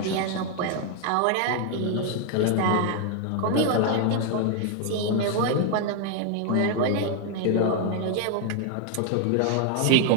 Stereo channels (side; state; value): both; different; correlation 0.00